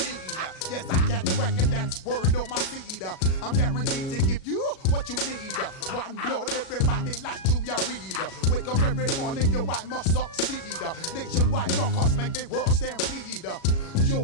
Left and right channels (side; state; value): right; late; 37 ms